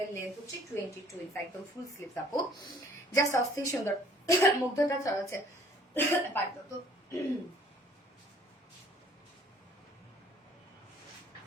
এর লেন্থ হচ্ছে 22 ইঞ্চ, একদম ফুল স্লিভস আপু, জাস্ট অস্থির সুন্দর। মুগ্ধতা চড়াচ্ছে পারতো তো।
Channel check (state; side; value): normal; both; correlation 0.56